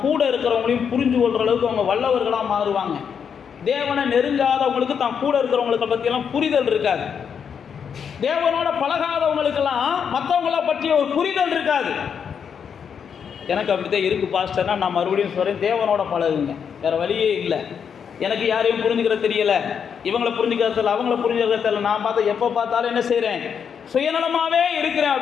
கூட இருக்கிறவங்களையும் புரிஞ்சு கொள்கிற அளவுக்கு அவங்க வல்லவர்களாக மாறுவாங்க. தேவனை நெருங்காதவங்களுக்கு தான் கூட இருக்கிறவங்களுக்கு பற்றியெல்லாம் புரிதல் இருக்காது. தேவனோட பழகாதவங்களுக்கெல்லாம் மற்றவங்கள பற்றிய ஒரு புரிதல் இருக்காது. எனக்கு அப்படித்தான் இருக்குது பாஸ்டர்னா, நான் மறுபடியும் சொல்கிறேன், தேவனோட பழகுங்க, வேறு வழியே இல்லை. எனக்கு யாரையும் புரிஞ்சுக்கிற தெரியல, இவங்களை புரிஞ்சுக்கிறது தெரியல, அவங்கள புரிஞ்சுக்கிறது தெரியல, நான் பார்த்தா எப்போ பார்த்தாலும் என்ன செய்கிறேன், சுயநலமாகவே இருக்கிறேன்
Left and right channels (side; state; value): right; quieter; 7.2 dB